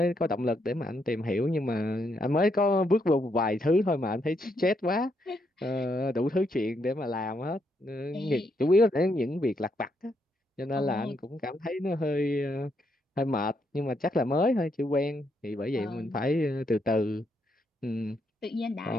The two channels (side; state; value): both; normal; correlation 0.77